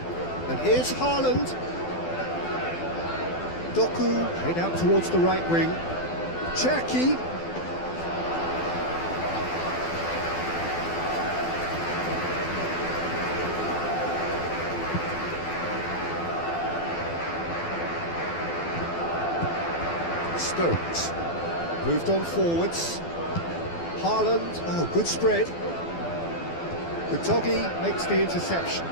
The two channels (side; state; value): right; late; 12 ms